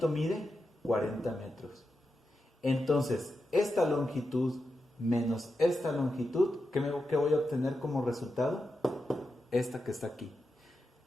mide 40 metros. Entonces, esta longitud menos esta longitud, ¿qué voy a obtener como resultado? Esta que está aquí.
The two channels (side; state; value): both; normal; correlation 0.88